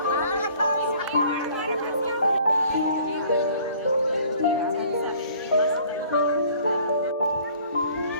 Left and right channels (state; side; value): inverted; both; correlation -0.54